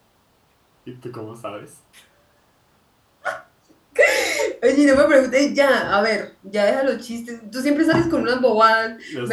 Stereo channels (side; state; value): both; identical; correlation 1.00